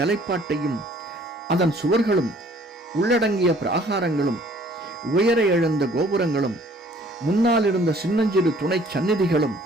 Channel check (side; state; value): both; normal; correlation 0.57